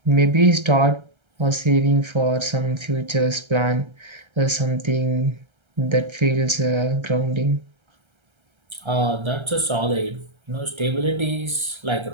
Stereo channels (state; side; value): late; left; 1.3 ms